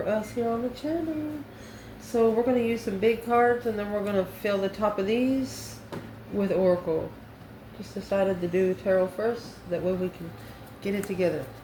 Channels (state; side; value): identical; both; correlation 1.00